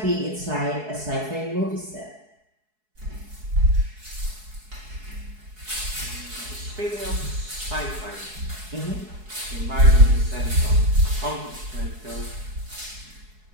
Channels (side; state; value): left; late; 4.7 ms